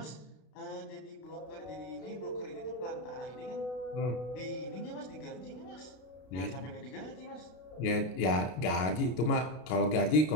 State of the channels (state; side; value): late; right; 32 ms